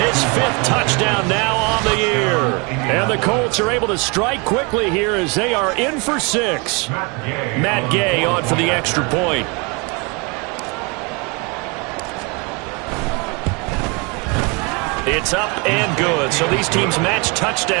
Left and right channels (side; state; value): left; quieter; 30.4 dB